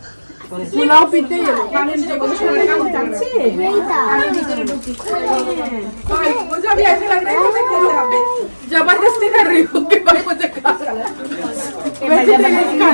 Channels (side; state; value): both; inverted; correlation -1.00